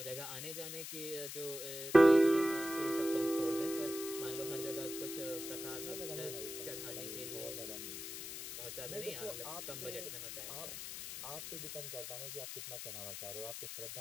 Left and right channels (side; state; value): left; noise; hiss, 7 dB below the sound